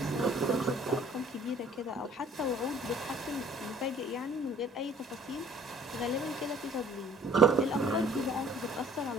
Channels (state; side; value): normal; both; correlation 0.54